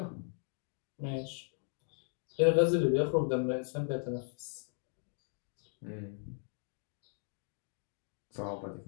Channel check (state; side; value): silent; right; 53 dB below the other